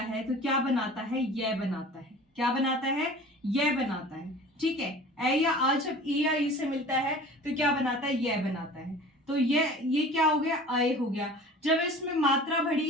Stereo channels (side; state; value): both; normal; correlation 0.42